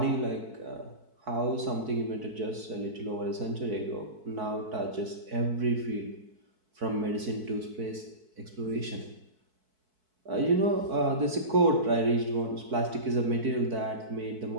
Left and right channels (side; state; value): left; late; 4.6 ms